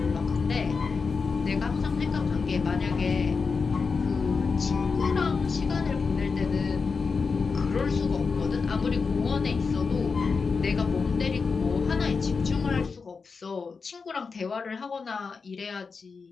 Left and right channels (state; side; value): quieter; right; 4.9 dB